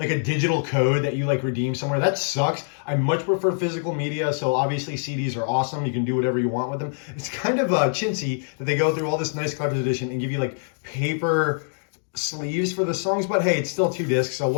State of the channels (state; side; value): silent; right; 62 dB below the other